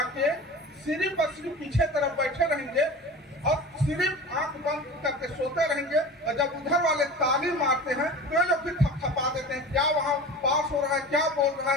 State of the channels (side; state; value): both; normal; correlation 0.35